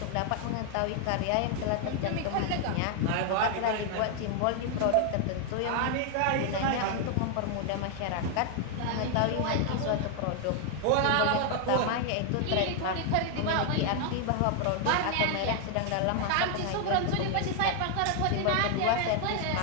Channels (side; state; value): both; different; correlation 0.00